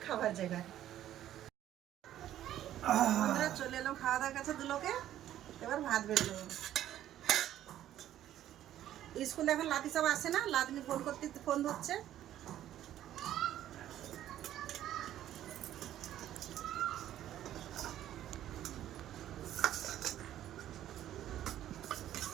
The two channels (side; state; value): left; quieter; 12.2 dB